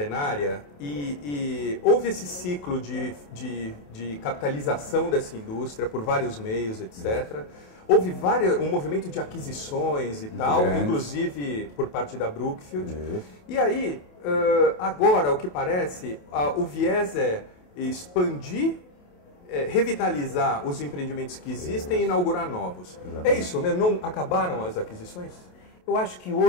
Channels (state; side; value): late; right; 28 ms